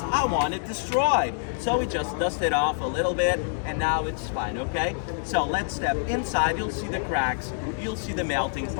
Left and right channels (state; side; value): silent; right; digital silence